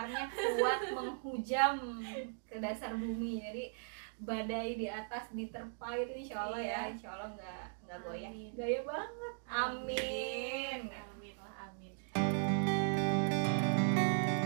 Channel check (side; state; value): left; silent; digital silence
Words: kuat menghujam ke dasar bumi. Jadi badai di atas diterpa itu insya Allah ya, insya Allah nggak goyah. Gaya banget. Amin. Amin lah, amin.